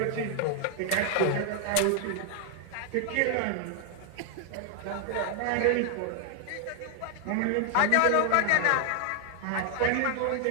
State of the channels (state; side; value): different; both; correlation 0.00